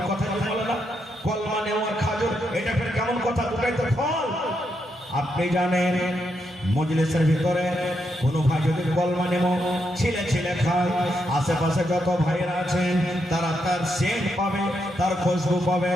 কথা বলে না, কলমা নেমু আর খাজর, এটা ফের কেমন কথা? দুটাই তো ফল। আপনি জানেন মজলিসের ভিতরে কোনো ভাই যদি কলমা নেমু ছিলে ছিলে খায়, আশেপাশে যত ভাইয়েরা আছেন তারা তার সেন্ট পাবে, তার খুশবু পাবে,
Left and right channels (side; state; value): both; normal; correlation 0.81